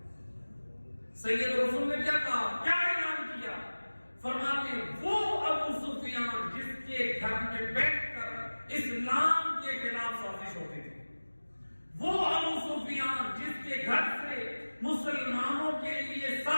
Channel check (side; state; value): both; inverted; correlation -1.00